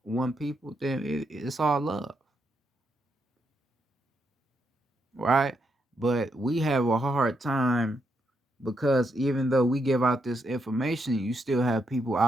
one people, then it's all love. Right? But we have a hard time because even though we give out this information, you still have people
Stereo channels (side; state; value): both; normal; correlation 0.80